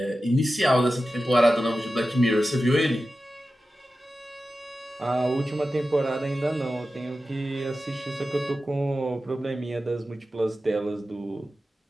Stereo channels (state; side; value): normal; both; correlation 0.93